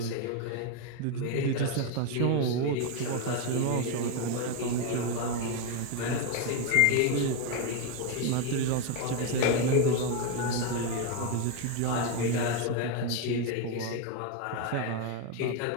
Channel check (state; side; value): different; both; correlation 0.02